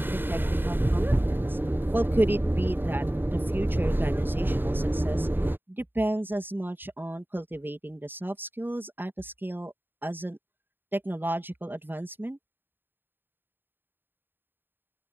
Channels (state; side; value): late; left; 0.097 ms